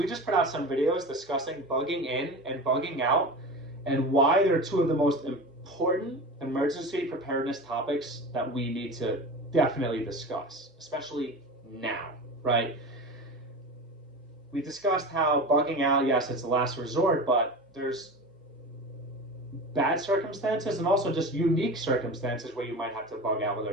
just put out some videos discussing bugging in and bugging out and why they're two of the most important emergency preparedness topics that we need to definitely discuss, especially now, right? We discussed how bugging out, yes, it's the last resort, but there's bad circumstances and also just unique circumstances where you might have to bug out, whether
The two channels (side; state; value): both; normal; correlation 0.30